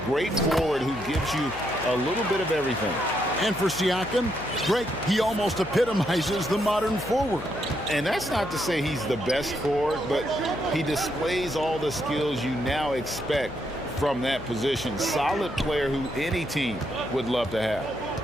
Great forward who gives you a little bit of everything. And for Siakam, Greg, he almost epitomizes the modern forward. And that's not to say he's the best forward, but he displays all the skills you now expect from that position. Solid player who any team would love to have.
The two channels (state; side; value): noise; left; hum, 16 dB below the sound